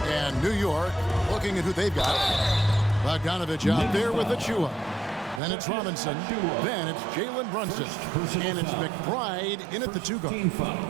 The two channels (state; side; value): drops out; left; at 5.4 s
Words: And New York, looking at who they've got. Bogdanovich out there with Achua. Then it's Robinson. Then it's Jalen Brunson. And it's McBride in at the 2-guard.